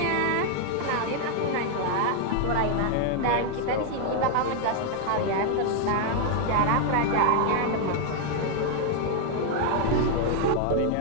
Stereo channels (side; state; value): both; different; correlation 0.00